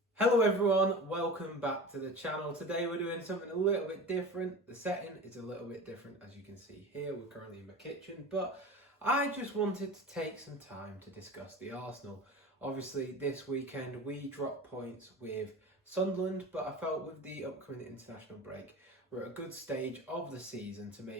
Hello everyone, welcome back to the channel. Today we're doing something a little bit different. The setting is a little bit different, as you can see here. We're currently in my kitchen, but I just wanted to take some time to discuss the Arsenal. Obviously this weekend we dropped points with Sunderland, but I felt with the upcoming international break we're at a good stage of the season to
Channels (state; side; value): normal; both; correlation 0.33